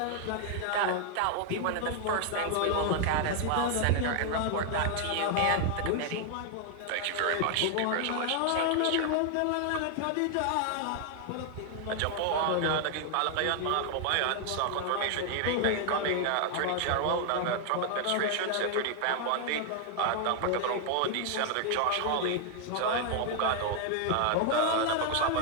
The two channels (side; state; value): both; different; correlation 0.00